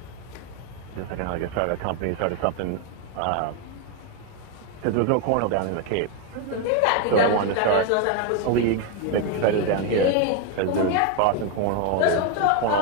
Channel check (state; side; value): different; both; correlation 0.01